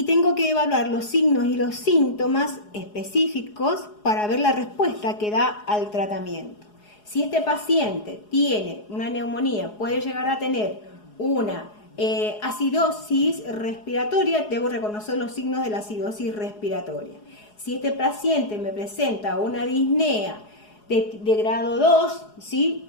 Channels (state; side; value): late; right; 4.8 ms